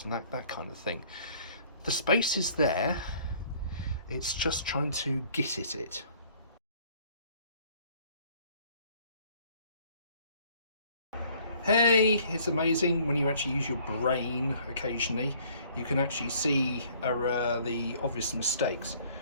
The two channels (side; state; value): both; inverted; correlation -0.57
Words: and that kind of thing. The space is there, it's just trying to get at it. Hey, it's amazing when you actually use your brain occasionally. You can actually see the obvious mistakes.